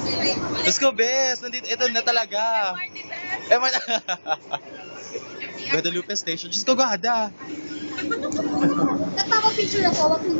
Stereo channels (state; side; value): inverted; both; correlation -1.00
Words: Let's go, bes. Nandito, ito na talaga. Guadalupe Station. Just go, Gada. Nagpapapicture ako, wag